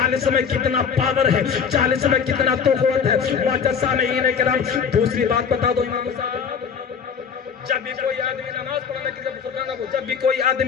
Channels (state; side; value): quieter; right; 6.7 dB